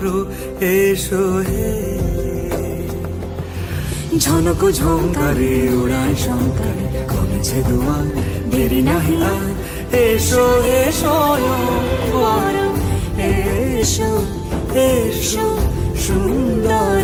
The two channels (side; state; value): both; identical; correlation 1.00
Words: এসো হে ঝনক ঝঙ্কারে উড়ায় শঙ্কারে কমেছে দুয়ার দেরি নাহি আর এসো হে স্বয়ং পর এসো এসো